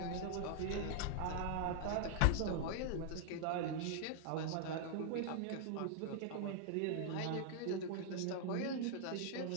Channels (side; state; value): both; different; correlation 0.00